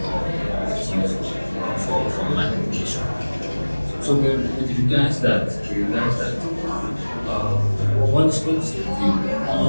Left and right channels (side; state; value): both; inverted; correlation -1.00